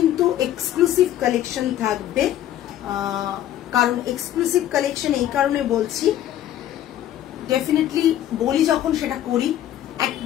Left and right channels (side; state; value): right; quieter; 12.0 dB